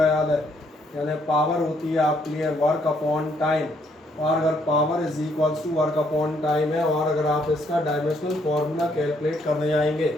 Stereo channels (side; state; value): both; normal; correlation 0.70